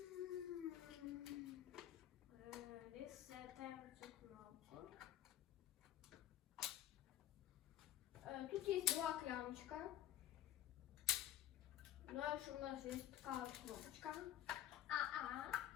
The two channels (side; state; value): right; quieter; 12.0 dB